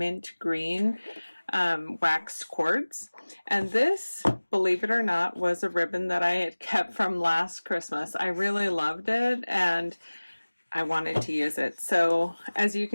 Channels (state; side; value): inverted; both; correlation -1.00